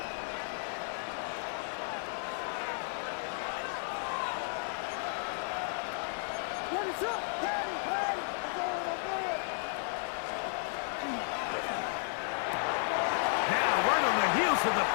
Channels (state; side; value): silent; right; 55 dB below the other